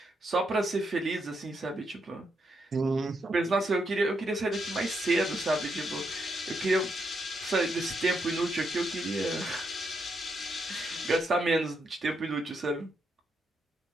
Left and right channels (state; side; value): normal; both; correlation 0.80